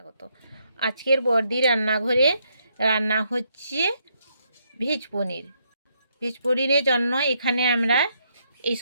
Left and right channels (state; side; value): inverted; both; correlation -0.75